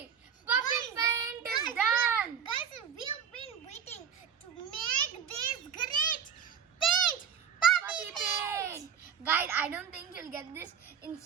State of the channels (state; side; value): quieter; left; 7.6 dB